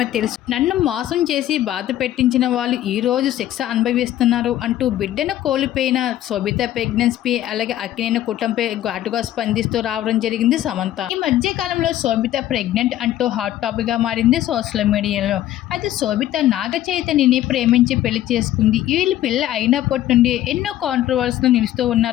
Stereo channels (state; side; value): quieter; right; 13.1 dB